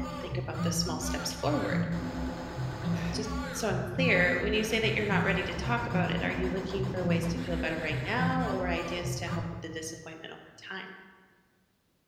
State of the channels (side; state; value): both; identical; correlation 1.00